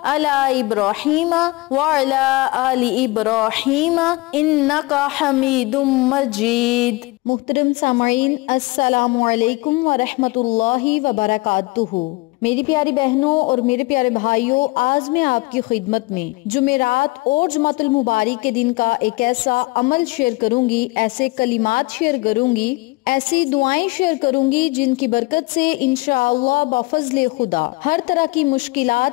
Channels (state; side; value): quieter; right; 23.7 dB